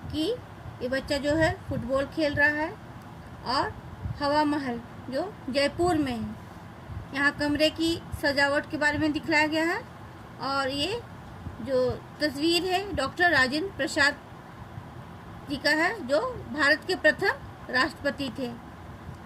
कि ये बच्चा जो है फुटबॉल खेल रहा है और हवा महल जो जयपुर में है, यहाँ कमरे की सजावट के बारे में दिखलाया गया है। और ये जो तस्वीर है डॉक्टर राजेंद्र प्रसाद जी का है, जो भारत के प्रथम राष्ट्रपति थे।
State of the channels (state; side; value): identical; both; correlation 1.00